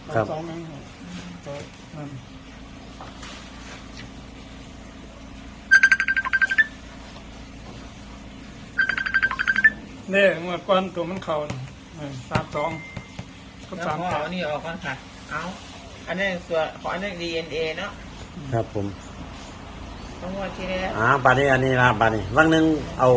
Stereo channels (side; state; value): both; identical; correlation 1.00